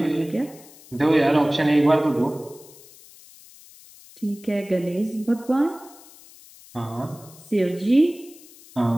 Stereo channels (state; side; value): noise; left; hiss, 22 dB below the sound